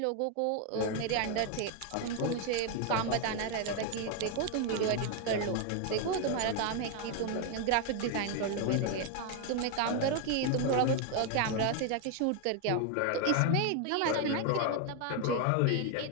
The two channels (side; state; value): both; different; correlation 0.01